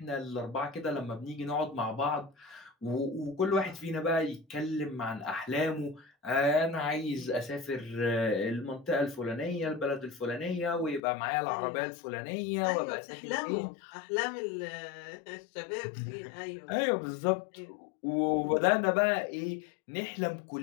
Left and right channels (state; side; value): drops out; right; at 11.0 s